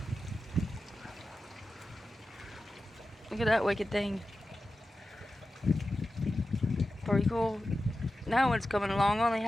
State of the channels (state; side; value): normal; both; correlation 0.93